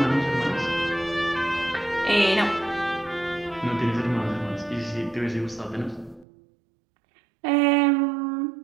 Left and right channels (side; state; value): left; drops out; at 6.2 s